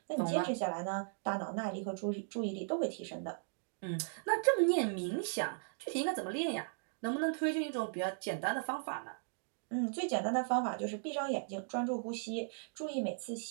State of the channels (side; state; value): left; silent; digital silence